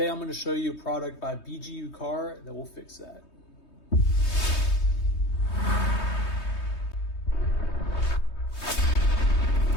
I'm going to show you a product by BGUCAR that will fix that.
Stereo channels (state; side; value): late; right; 3.2 ms